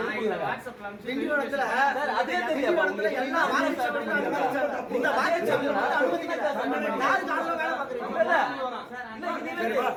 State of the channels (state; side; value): identical; both; correlation 1.00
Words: திண்டிவனத்துல அதே திண்டிவனத்துல எல்லா இந்த வாக்குச்சாவடியில அனுமதிக்கல. யாரு காலைல வேலை பாக்குறீங்க?